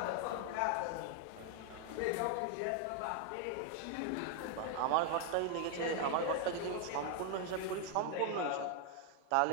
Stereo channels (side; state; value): both; different; correlation 0.00